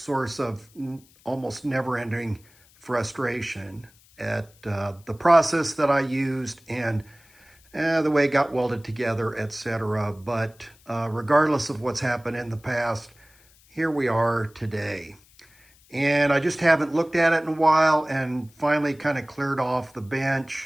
of almost never-ending frustration at the process that I used and the way it got welded together, etc. But regardless of what's happened in the past, here we are today. And I just haven't looked at it in a while and finally kind of cleared off the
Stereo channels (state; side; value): noise; left; hiss, 29 dB below the sound